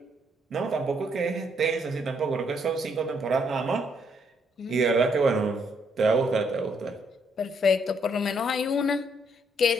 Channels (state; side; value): normal; both; correlation 0.71